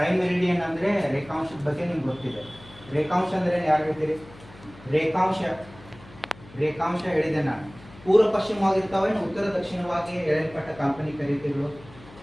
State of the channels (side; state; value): left; noise; hum, 21 dB below the sound